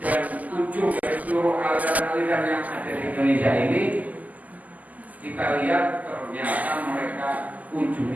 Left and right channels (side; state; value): left; late; 0.078 ms